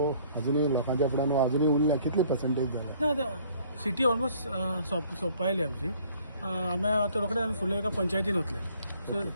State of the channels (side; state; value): both; inverted; correlation -0.59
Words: अजुनूय लोकांच्या फुड्यान अजुनूय उरला कितली पर्संटेज जाला ना आता सिटी ऑलमोस्ट सोंपायली आमची आम्ही आता रोखडे आम्ही फुडल्या एका पंचायतीन वतले सो